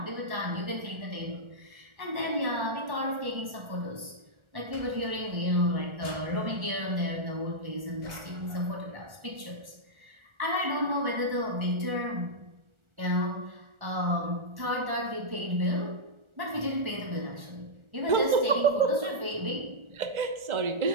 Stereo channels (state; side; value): late; left; 1.4 ms